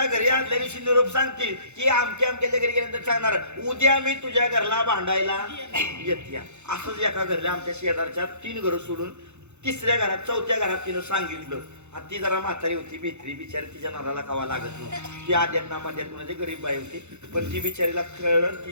घरी आदल्या दिवशी निरोप सांगतील की आमच्या घरी गेल्यानंतर सांगणार उद्या मी तुझ्या घरला भांडायला येते असंच एका घरला आमच्या शेजारच्या 3 घरं सोडून 3ऱ्या घरात 4थ्या घरात तिनं सांगितलं आणि ती जरा म्हातारी होती भित्री बिचारी तिच्या नराला कावा लागत नव्हती ती आद्यात नामाद्यात म्हणजे गरीब बाई होती पण ती बिचारीला कळलं ती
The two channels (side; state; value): left; late; 0.82 ms